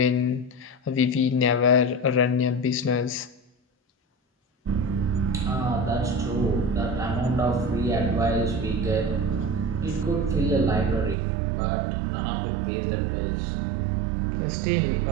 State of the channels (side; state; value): left; drops out; at 11.2 s